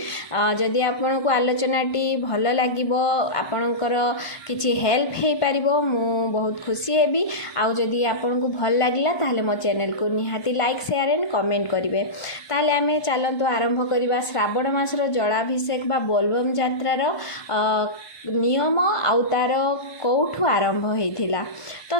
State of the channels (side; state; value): right; late; 1.2 ms